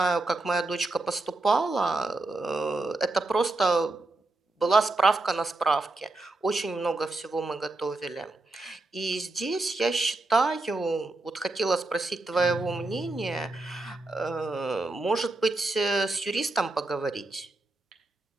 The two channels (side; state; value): left; quieter; 3.1 dB